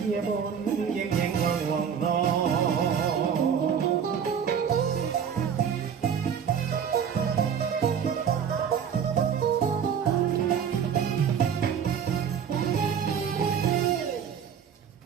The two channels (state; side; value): quieter; left; 7.6 dB